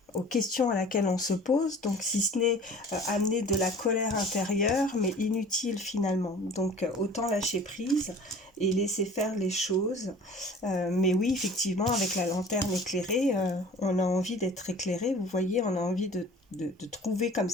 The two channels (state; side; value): normal; both; correlation 0.45